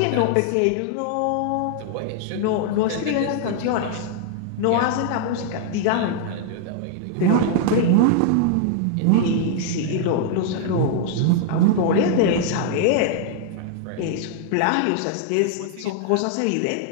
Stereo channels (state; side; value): different; both; correlation -0.01